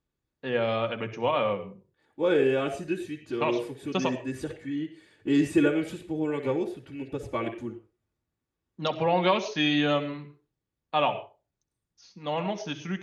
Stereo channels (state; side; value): identical; both; correlation 1.00